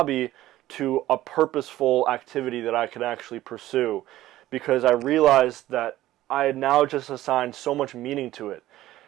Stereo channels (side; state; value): left; quieter; 15.1 dB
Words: to a purposeful activity that I could actually pursue, because I realized that I had now just assigned so much meaning to it.